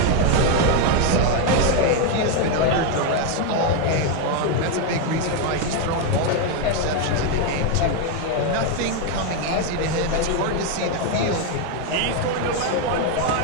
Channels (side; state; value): both; different; correlation 0.01